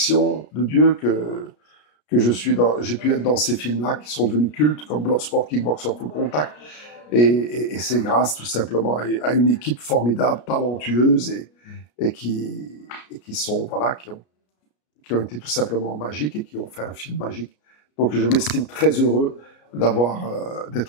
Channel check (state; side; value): late; right; 33 ms